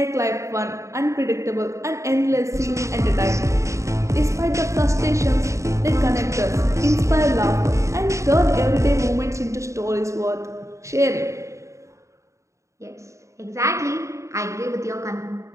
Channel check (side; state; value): left; late; 0.14 ms